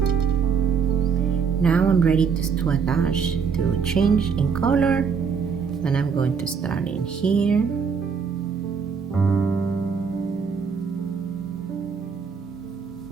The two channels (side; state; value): left; quieter; 6.1 dB